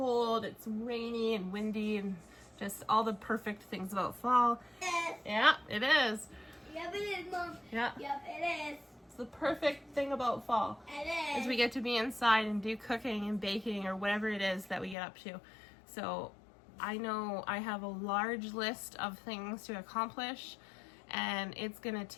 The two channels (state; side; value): drops out; right; at 15.0 s